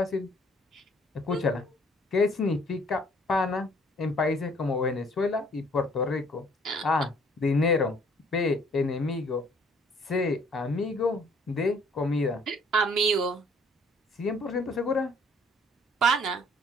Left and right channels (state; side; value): normal; both; correlation 0.59